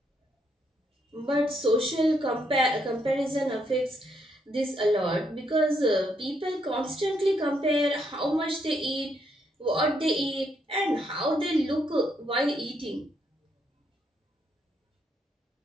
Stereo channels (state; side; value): normal; both; correlation 0.75